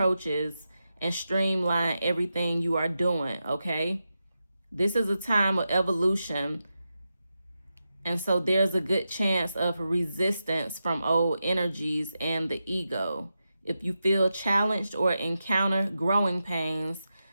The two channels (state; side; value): inverted; both; correlation -0.89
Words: and streamline everything you are doing, okay? This is a time of evolution, and so there's a good chance of resistance from old energies and the ego. If you feel challenged or encounter growing pains,